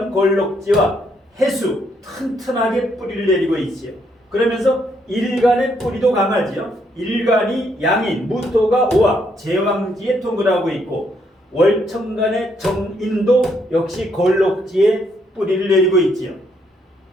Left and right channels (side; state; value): both; normal; correlation 0.73